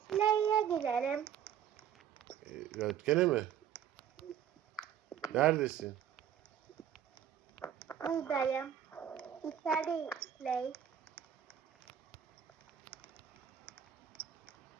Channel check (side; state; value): left; quieter; 9.4 dB